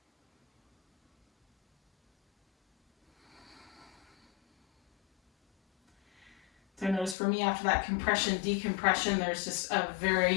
So notice for me, after that compression, decompression, there's just a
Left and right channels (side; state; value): right; drops out; at 7.2 s